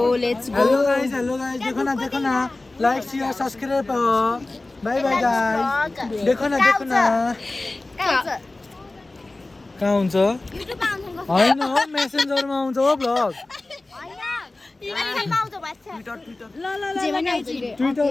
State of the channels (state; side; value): quieter; right; 3.0 dB